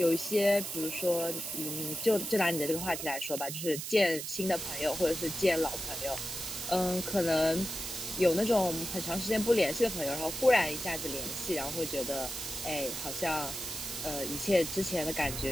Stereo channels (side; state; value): right; noise; hiss, 6 dB below the sound